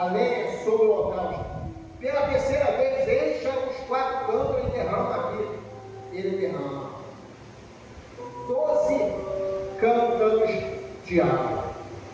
lenha, sobre o holocausto. Pela terceira vez, encha os 4 cântaros e derrama aqui. Ele derrama 12 cântaros de água,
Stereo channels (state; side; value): identical; both; correlation 1.00